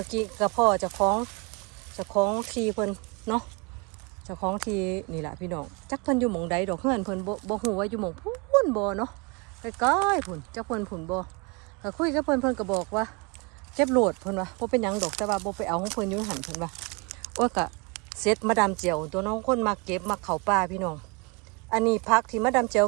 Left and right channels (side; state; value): left; quieter; 30.3 dB